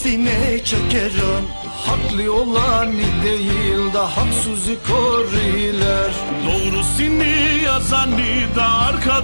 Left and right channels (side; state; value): both; inverted; correlation -1.00